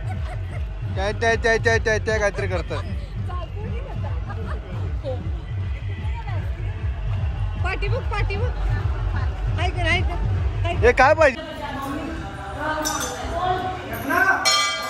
काय त्या त्या त्या त्या त्या काहीतरी करतात. हे काय पाहिजे?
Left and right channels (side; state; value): both; identical; correlation 1.00